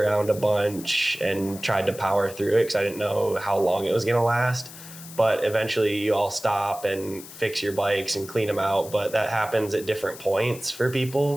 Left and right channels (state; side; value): noise; left; hiss, 15 dB below the sound